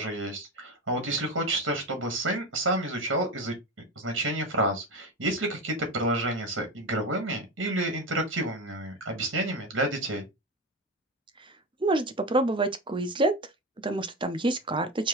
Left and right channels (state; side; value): normal; both; correlation 0.21